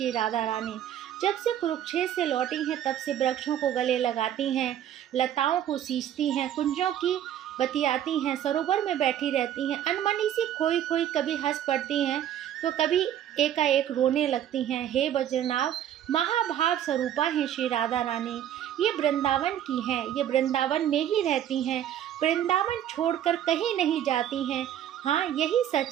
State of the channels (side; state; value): left; quieter; 10.8 dB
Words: राधा रानी। जब से कुरुक्षेत्र से लौटी हैं तब से वृक्षों को गले लगाती हैं, लताओं को सींचती हैं, कुंजों की बतियाती हैं, सरोवर में बैठी रहती हैं, अनमनी सी खोई खोई कभी हंस पड़ती हैं तो कभी एकाएक रोने लगती हैं। हे वज्रनाभ, महाभाव स्वरूपा हैं श्री राधा रानी। ये वृंदावन की हैं, ये वृंदावन में ही रहती हैं, वृंदावन छोड़कर कहीं नहीं जाती हैं। हाँ, यही